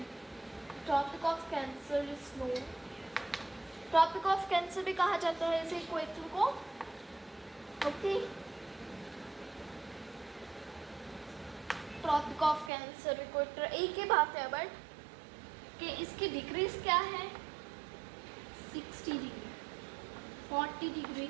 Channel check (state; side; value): drops out; left; at 12.7 s